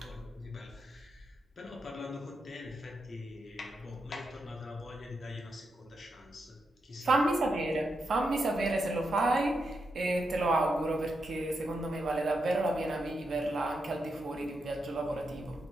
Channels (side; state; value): both; normal; correlation 0.85